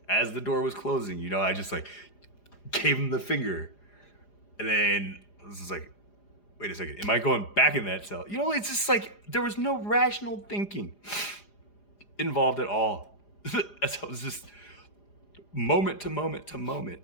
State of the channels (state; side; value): late; right; 4.9 ms